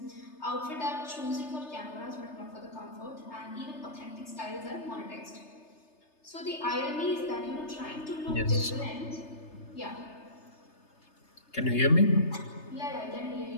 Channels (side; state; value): right; late; 3.3 ms